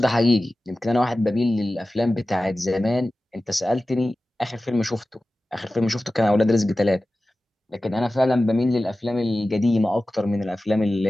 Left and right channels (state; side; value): normal; both; correlation 0.95